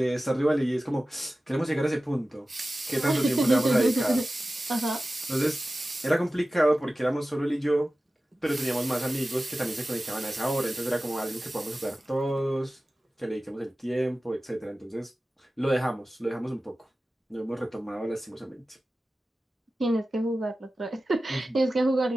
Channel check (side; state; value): both; normal; correlation 0.95